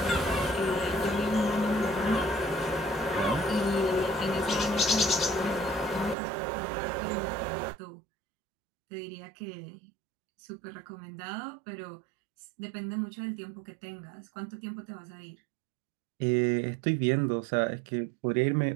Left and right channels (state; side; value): drops out; left; at 6.2 s